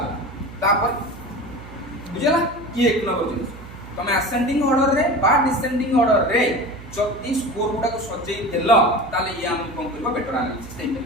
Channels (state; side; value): noise; right; hum, 16 dB below the sound